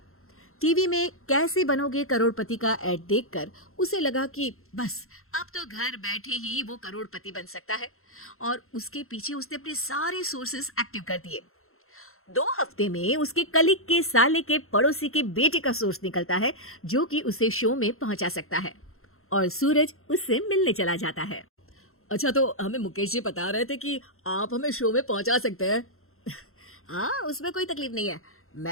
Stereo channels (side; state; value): right; late; 0.62 ms